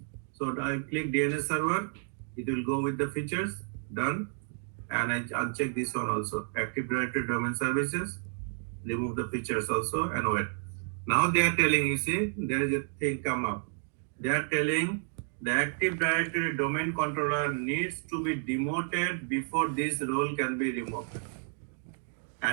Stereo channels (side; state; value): left; silent; 57 dB below the other